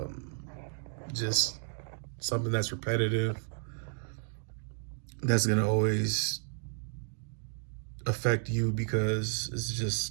just something that's repetitive, that's gonna always affect you because it's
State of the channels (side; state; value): left; silent; 56 dB below the other